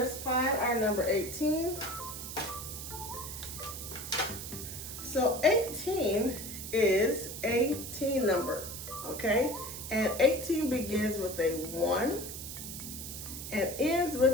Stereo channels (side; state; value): right; noise; hiss, 8 dB below the sound